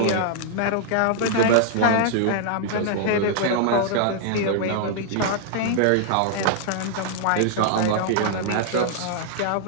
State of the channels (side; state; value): both; different; correlation -0.01